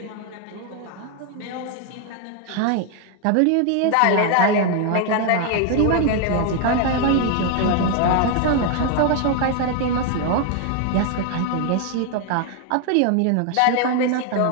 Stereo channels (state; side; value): different; both; correlation 0.01